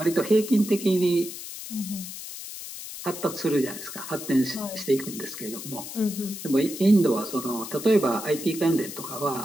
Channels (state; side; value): noise; left; hiss, 10 dB below the sound